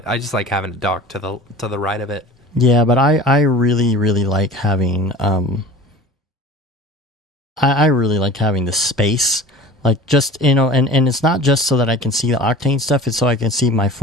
just like having it docked to the right of it. Yeah, but I really, really like having I really like having the space. Like just and it's not just so that I can see the Octane stuff, it's so I can see my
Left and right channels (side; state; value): both; normal; correlation 0.40